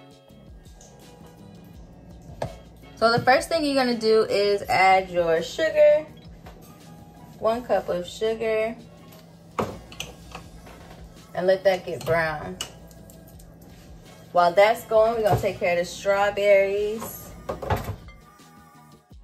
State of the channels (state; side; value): identical; both; correlation 1.00